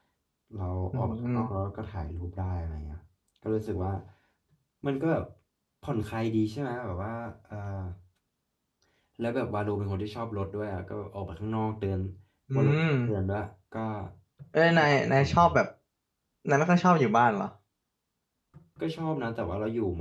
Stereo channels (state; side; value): identical; both; correlation 1.00